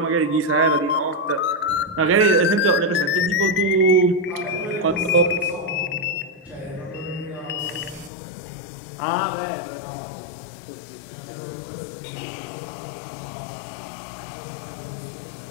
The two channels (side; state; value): right; drops out; at 8.1 s